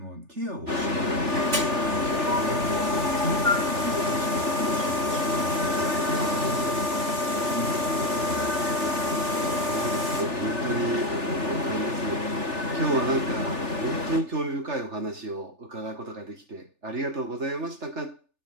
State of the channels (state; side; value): late; left; 3.4 ms